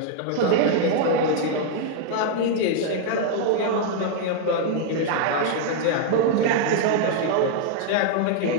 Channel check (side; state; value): both; different; correlation 0.00